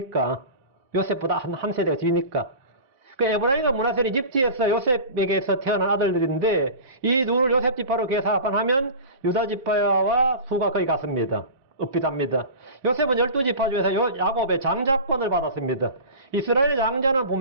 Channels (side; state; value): both; inverted; correlation -0.34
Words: 요셉보다 한 세대가 뒤니까. 그 에브라임과 문하세는 이집트에서 요셉에게서 태어난 아들들인데, 이 둘을 요셉 지파로 계산하면 유다 지파와 수가 거의 같습니다. 읍비답니다. 요셉은 12지파 중에서 야곱의 장자권을 받았습니다. 이스라엘 장자는